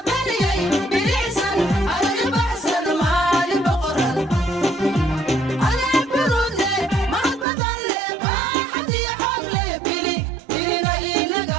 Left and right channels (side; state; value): left; drops out; at 7.5 s